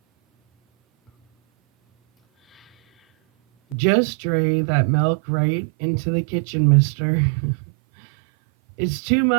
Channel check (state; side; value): drops out; left; at 3.8 s